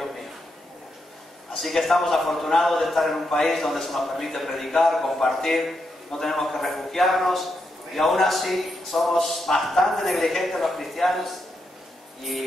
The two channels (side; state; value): both; normal; correlation 0.83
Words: mío. Así que estamos afortunados de estar en un país donde se nos permite predicar, compartir, no tenemos que refugiarnos, y aún así somos bastante negligentes los cristianos,